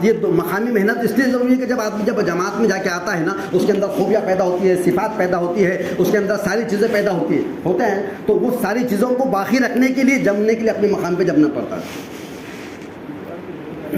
یہ مقامی محنت اس لیے ضروری ہے کہ جب آدمی جب جماعت میں جا کے آتا ہے نا, اس کے اندر خوبیاں پیدا ہوتی ہے, صفات پیدا ہوتی ہے, اس کے اندر ساری چیزیں پیدا ہوتے ہیں, تو وہ ساری چیزوں کو باقی رکھنے کے لیے, جمنے کے لیے اپنے مقام پہ جمنا پڑتا ہے.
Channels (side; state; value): both; identical; correlation 1.00